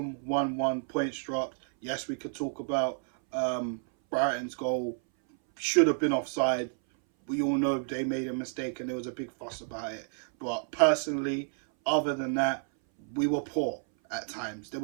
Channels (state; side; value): silent; left; 58 dB below the other